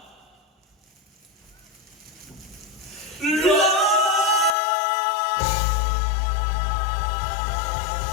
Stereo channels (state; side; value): drops out; right; at 4.5 s